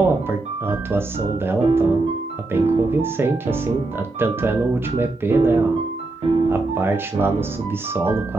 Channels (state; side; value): quieter; left; 3.1 dB